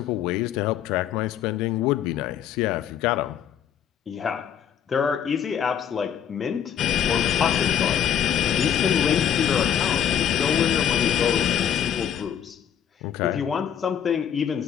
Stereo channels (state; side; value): quieter; right; 9.1 dB